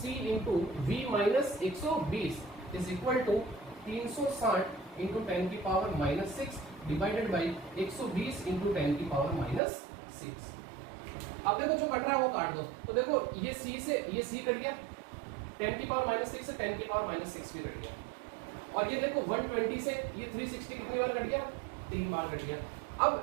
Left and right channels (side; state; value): left; drops out; at 9.6 s